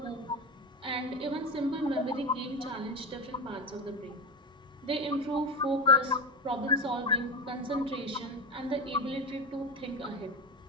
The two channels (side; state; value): both; normal; correlation 0.21